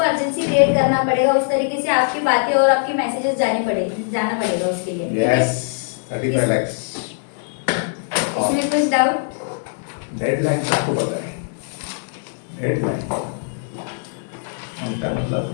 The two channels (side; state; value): right; silent; digital silence